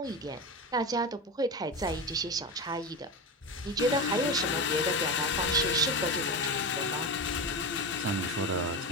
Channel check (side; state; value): both; normal; correlation 0.20